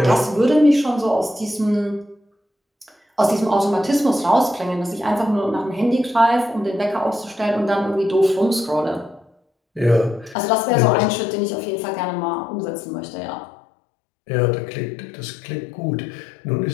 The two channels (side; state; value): right; drops out; at 10.4 s